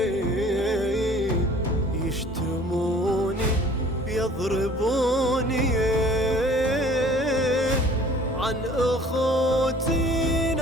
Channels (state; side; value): normal; both; correlation 0.51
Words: يشتموني يضربوني، عن أخوتي